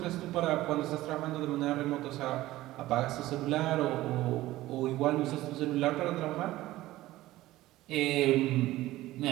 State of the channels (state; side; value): quieter; left; 16.6 dB